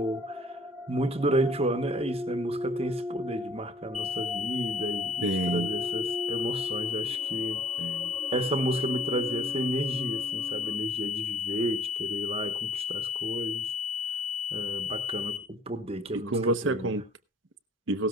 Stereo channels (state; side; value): normal; both; correlation 0.57